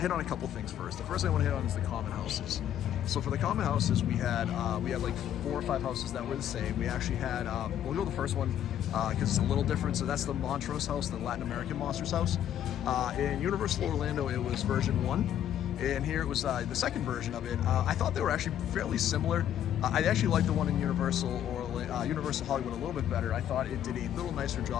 on a couple things first. The first thing I want to hit on is the common houses. So for the common houses, we had like 4 or 5 houses that were the same. We actually had, we'll go with the first one because it's a little different. So that's the Montrose house, the Latin American Monsters house. In Universal Orlando, it was version 1. And here it was the second version of it. I thought they were actually fairly similar. I actually liked the one in Universal Hollywood a little bit better. I thought it did a little nicer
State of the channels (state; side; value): quieter; right; 10.7 dB